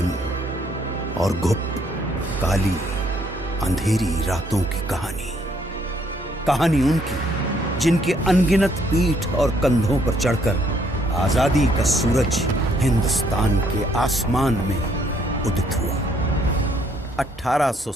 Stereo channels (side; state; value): both; normal; correlation 0.68